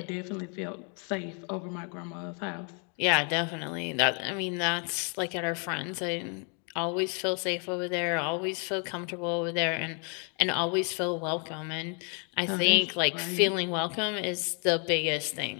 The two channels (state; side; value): quieter; right; 38.7 dB